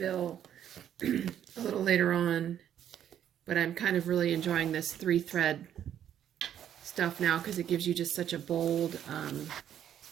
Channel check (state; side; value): quieter; left; 10.1 dB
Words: a little later on, but I'm kind of really enjoying this 3-thread stuff now because it gives you just such a bold,